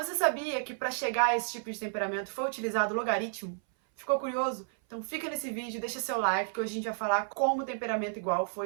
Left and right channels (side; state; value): left; silent; 57 dB below the other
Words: você sabia que para chegar a esse tipo de temperamento foi utilizado logaritmo? Ficou curioso? Então fica nesse vídeo, deixa seu like, que hoje a gente vai falar como o temperamento igual